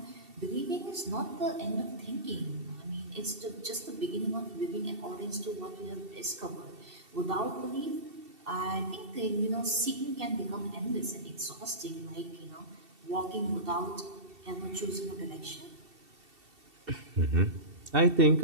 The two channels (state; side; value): late; left; 2.7 ms